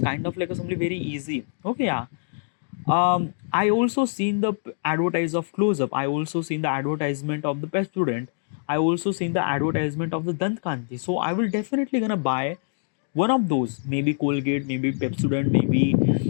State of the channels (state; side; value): silent; right; digital silence